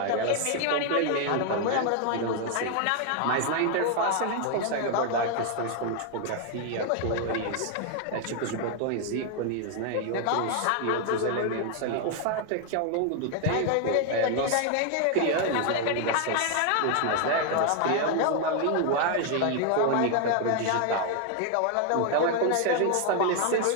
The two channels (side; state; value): both; different; correlation 0.00